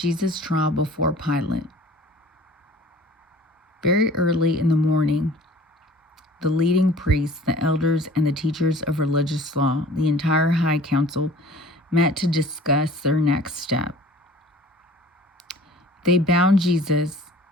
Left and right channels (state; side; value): normal; both; correlation 0.47